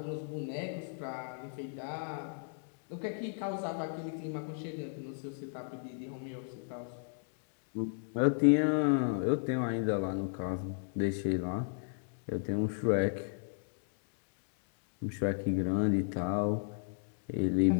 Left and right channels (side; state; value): right; silent; digital silence